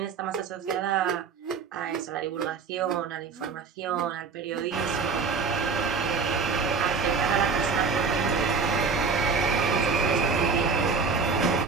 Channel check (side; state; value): left; quieter; 5.1 dB